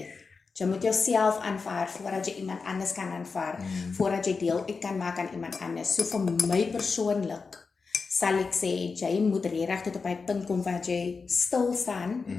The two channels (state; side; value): quieter; right; 4.7 dB